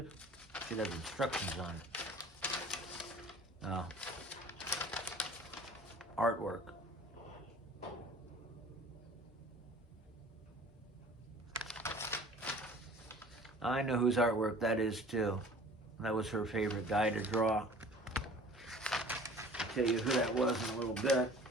Should have instructions on it. Oh. Artwork. I know whose artwork that is too. That was her favorite guy to draw. I'll tell you who that was in a little bit.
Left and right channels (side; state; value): both; normal; correlation 0.47